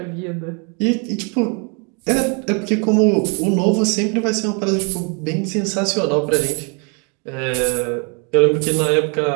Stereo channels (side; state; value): left; quieter; 35.4 dB